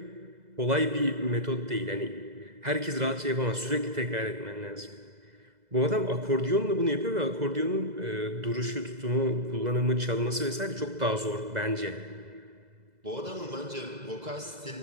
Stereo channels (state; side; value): late; left; 2.0 ms